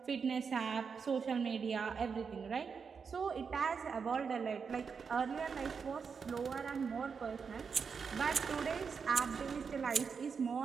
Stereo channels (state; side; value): quieter; left; 5.8 dB